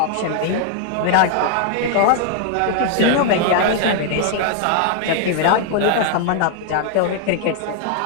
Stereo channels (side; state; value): both; different; correlation 0.00